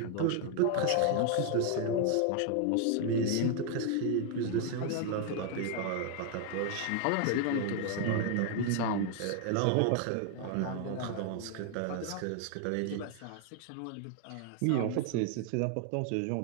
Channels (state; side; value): different; both; correlation 0.00